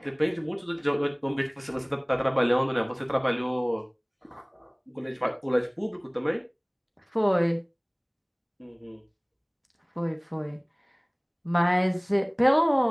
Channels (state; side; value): identical; both; correlation 1.00